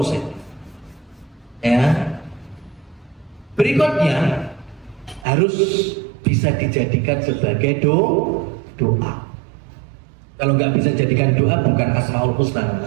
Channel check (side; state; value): left; drops out; at 5.2 s